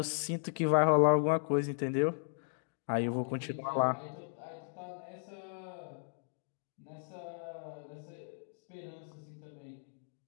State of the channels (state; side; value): silent; right; digital silence